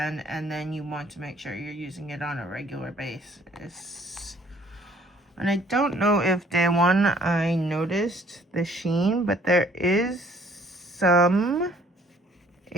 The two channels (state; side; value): normal; both; correlation 0.59